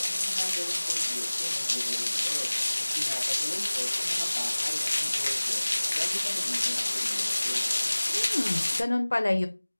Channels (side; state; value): both; inverted; correlation -1.00